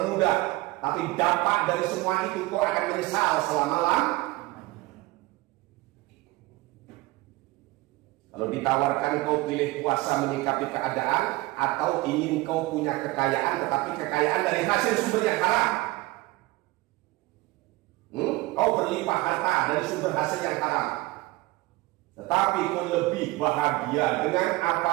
mudah. Tapi dampak dari semua itu kau akan menyesal selama-lamanya. Kalau ditawarkan kau pilih puasa menyikapi keadaan atau ingin kau punya kekayaan tetapi kekayaan dari hasil sumber yang haram. Kau berlimpah harta dari sumber hasil yang haram. Tetapi kau lebih bahagia dengan apa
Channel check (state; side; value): quieter; left; 20.3 dB